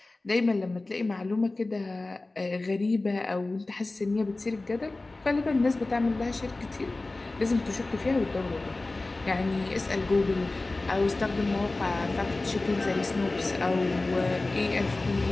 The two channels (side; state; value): right; quieter; 3.1 dB